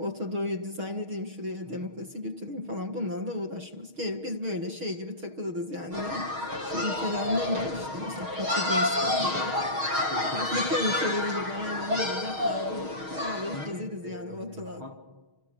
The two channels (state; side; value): late; left; 6.4 ms